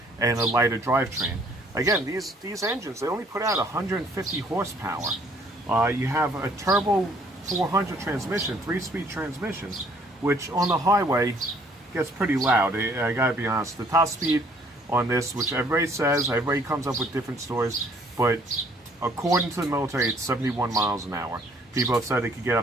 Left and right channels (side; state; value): both; normal; correlation 0.61